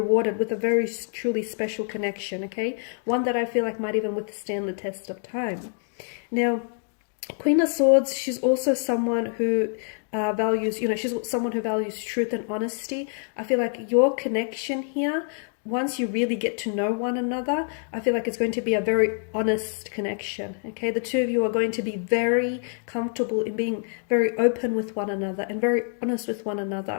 with a very truly special connection. Okay, one that I feel like might even withstand the test of time. Now, Queen of Swords, she's also someone who values, you know, she's someone who values truth and honesty. I feel like your connection here, once you really get to know one another, I feel like it's going to be a very honest connection. Okay, the two of you are going to be very comfortable in being very open with one another and very honest with one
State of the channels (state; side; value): silent; right; 56 dB below the other